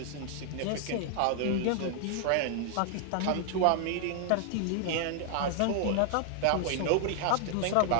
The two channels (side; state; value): both; different; correlation 0.00